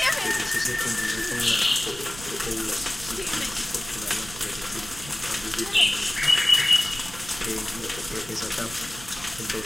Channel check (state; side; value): noise; right; rumble, 15 dB below the sound